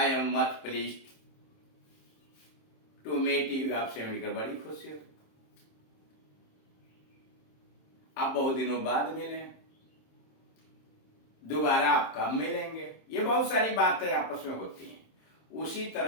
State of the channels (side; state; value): right; late; 27 ms